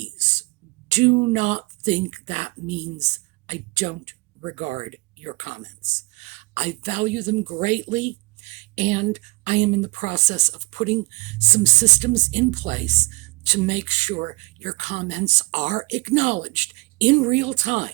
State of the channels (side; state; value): left; quieter; 25.9 dB